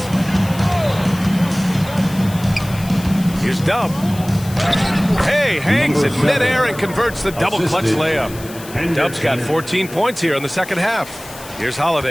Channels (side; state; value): left; noise; hiss, 17 dB below the sound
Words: Here's Dub. Hey, hangs it midair and converts the double clutch layup. Dub's got 14 points here in the second half. Here's